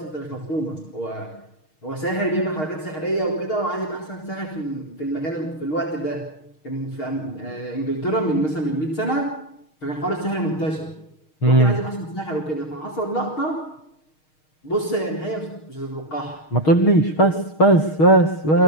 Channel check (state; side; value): late; right; 6.4 ms